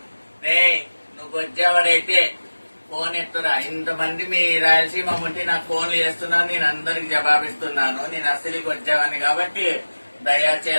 రే నువ్వు వచ్చేవాడైతే ఫోన్ ఎత్తురా. ఇంతమంది మీ రాయలసీమ ముట్టి నాకు ఫోన్లు చేస్తున్నాను, నేను అందరికి జవాబిస్తున్నాను. నేను అసలుకి వచ్చావని కాబట్టి దయా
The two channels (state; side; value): inverted; both; correlation -1.00